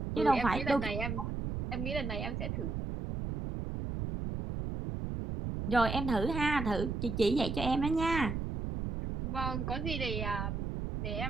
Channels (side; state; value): right; noise; rumble, 3 dB below the sound